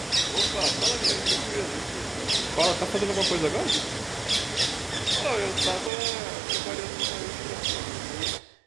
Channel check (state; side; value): drops out; left; at 5.9 s